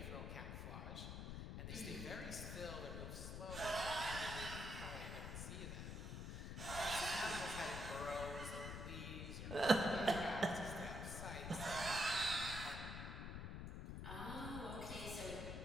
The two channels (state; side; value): noise; left; rumble, 5 dB below the sound